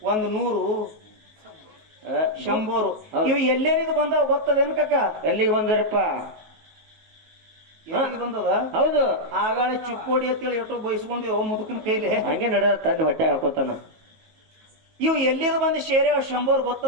100, 100. ಇವು ಎಲ್ಲೇನಿದ್ ಬಂದಾವ ಗೊತ್ತದೇನು ಕಾಕ? ಎಲ್ಲಿಗೆ ಬಂದ್ರಪ್ಪ? ಎಲ್ಲಿಗೆ ಬಂದದ? ಹೌದು. ಆಗಾಳೆ ಚುಕ್ಕೋಡಿ ಅಂತೇಳಿ ಎಷ್ಟೋ ಬಯಸ್ಕೊಂಡು ಮುದುಕನ ಕೈಲಿ ಹಂಗೆ ನಡೆದ ತನ್ನ ಹೊಟ್ಟೆ ಹಾಕೋತಾನ. ಇವು ಎಲ್ಲಿದ್ ಬಂದು ಶೇರೆ 100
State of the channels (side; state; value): left; late; 19 ms